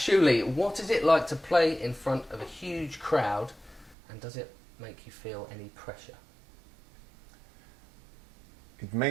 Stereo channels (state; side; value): drops out; left; at 4.0 s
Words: what is it like to play in front of a huge crowd, and does it make you feel any pressure? It